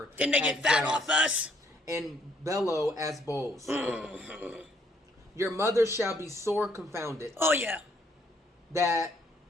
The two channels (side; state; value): both; normal; correlation 0.67